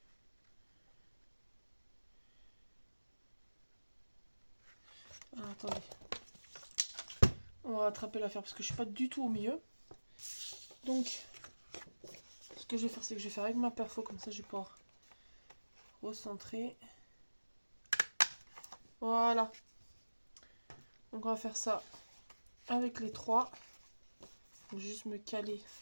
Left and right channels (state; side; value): inverted; both; correlation -1.00